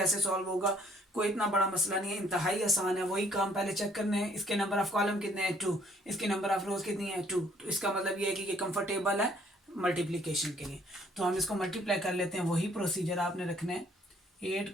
सॉल्व होगा। कोई इतना बड़ा मसला नहीं है, इंतहाई आसान है। वही काम पहले चेक करने हैं, इसके नंबर ऑफ कॉलम कितने हैं 2, इसके नंबर ऑफ रोज कितनी है 2, तो इसका मतलब ये है कि ये कंफर्टेबल है मल्टीप्लिकेशन के लिए। तो हम इसको मल्टीप्लाई कर लेते हैं, वही प्रोसीजर आपने रखना है। 8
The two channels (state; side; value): normal; both; correlation 0.63